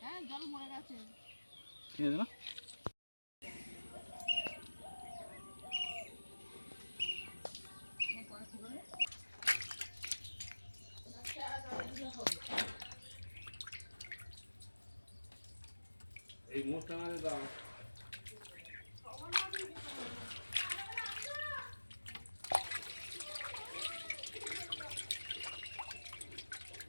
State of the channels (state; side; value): inverted; both; correlation -1.00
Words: হ্যাঁ জল মরে গেছে। ঠিক আছে না? এই মোটটা আমাদের দাও